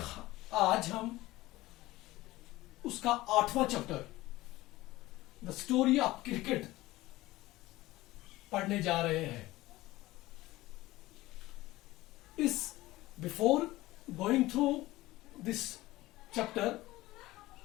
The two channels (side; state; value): right; quieter; 17.9 dB